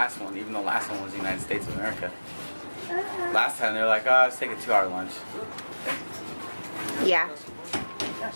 one, even though the last one was the United States of America. Last time they were like, oh, let's take a 2-hour lunch. Yeah.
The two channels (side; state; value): both; inverted; correlation -1.00